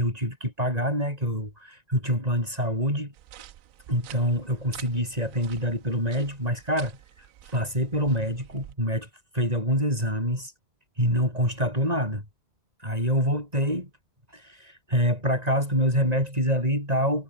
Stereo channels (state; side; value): late; left; 1.9 ms